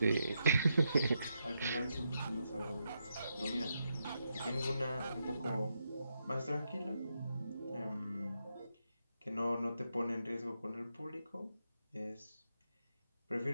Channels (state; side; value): inverted; both; correlation -0.83